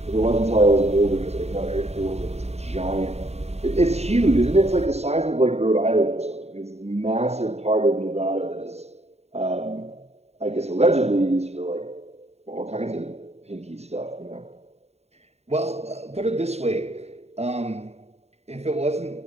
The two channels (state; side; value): late; left; 0.31 ms